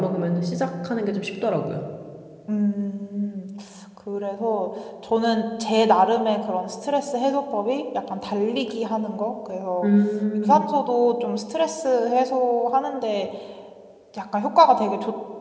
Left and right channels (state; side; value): identical; both; correlation 1.00